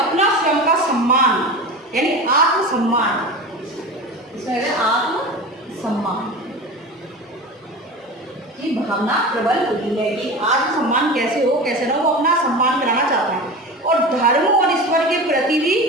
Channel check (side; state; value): both; normal; correlation 0.30